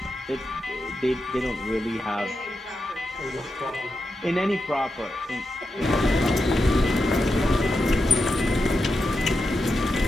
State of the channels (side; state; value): both; normal; correlation 0.88